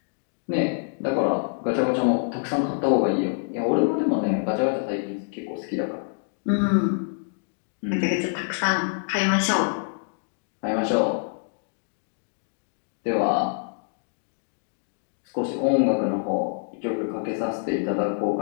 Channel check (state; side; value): silent; right; digital silence